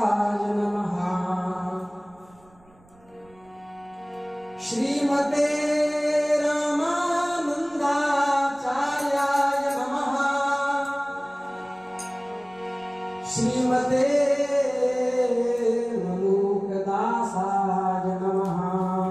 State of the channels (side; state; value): right; noise; rumble, 30 dB below the sound